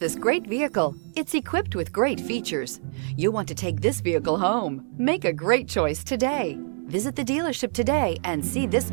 great vehicle. It's equipped with great features. You'll want to take this vehicle home. Make a great choice today. Visit the dealership today and see this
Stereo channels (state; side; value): silent; left; digital silence